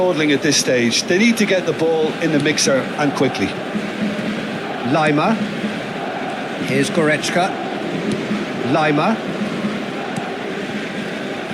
at this stage. They need to get the ball in the mixer and quickly. Lima. Here's Goretzka. Lima.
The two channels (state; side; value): identical; both; correlation 1.00